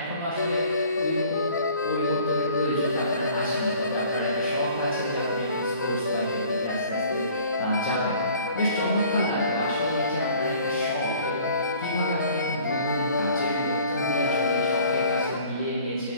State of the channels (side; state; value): both; inverted; correlation -0.52